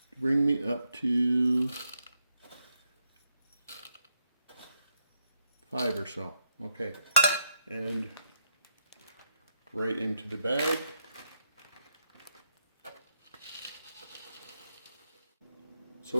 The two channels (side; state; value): both; inverted; correlation -0.80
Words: Bring me up to 5 or so. Okay, and right into the bag.